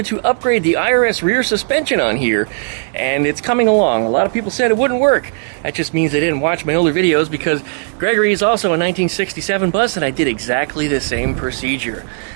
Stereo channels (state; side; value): silent; left; digital silence